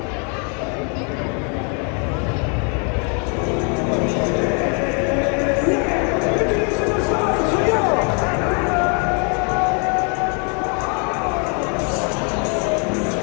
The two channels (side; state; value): right; quieter; 37.7 dB